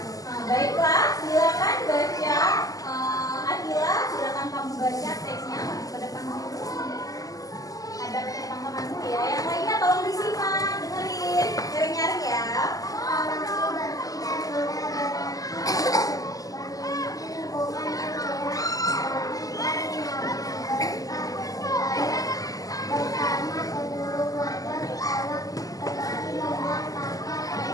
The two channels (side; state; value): right; late; 0.17 ms